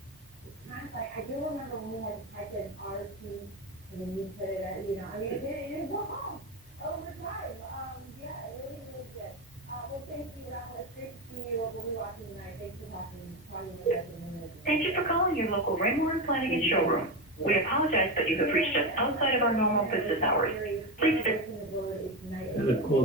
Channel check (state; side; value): normal; both; correlation 0.15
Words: It's kind of like, I do remember when we had to type in RT, and then you put it at, it was all over time. Yeah, it really was good. Well, thank you, Rafa. It's great to see you. We'll be watching tonight. Thanks for talking with us in a minute. Thank you for calling your local Raymore and Flanagan showroom. We apologize that you have reached us outside of our normal business hours. Please visit. Gotta